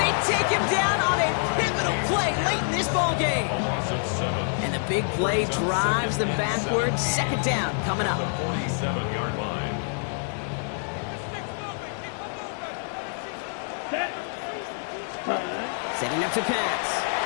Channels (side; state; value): right; silent; 60 dB below the other